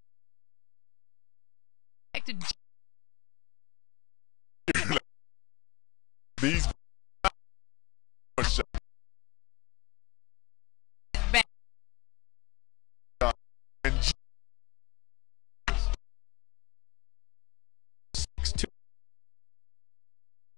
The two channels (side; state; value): right; quieter; 22.9 dB